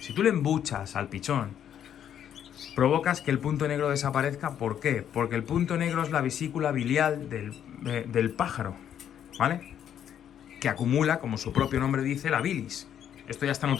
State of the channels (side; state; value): right; quieter; 9.6 dB